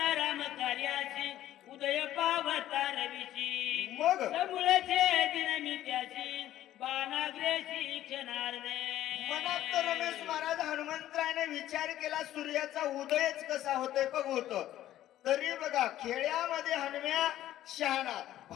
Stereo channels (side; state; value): right; quieter; 13.1 dB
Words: राम कार्याची उदय पावता रवीची मग मुळचे दिन मी त्याची बाणाग्रेशी क्षणार्धे. मनात तर रमेश महाराज हनुमंतरायने विचार केला सूर्याचा उदयच कसा होतोय बघतो. तरी बघा खेड्यामध्ये हनुम्या शहाणा.